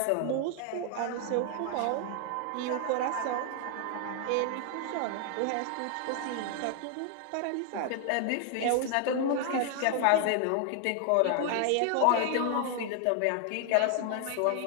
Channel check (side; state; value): both; different; correlation 0.00